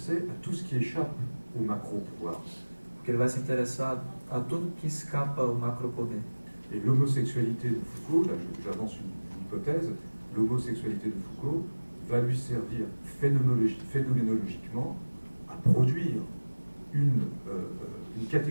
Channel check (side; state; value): both; inverted; correlation -1.00